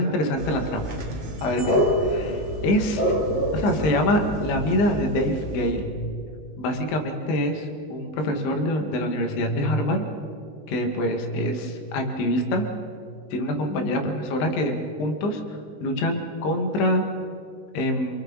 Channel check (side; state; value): right; late; 20 ms